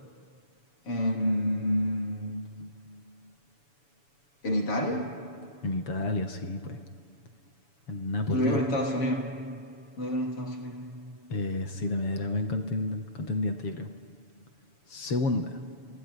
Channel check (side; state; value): right; late; 7.0 ms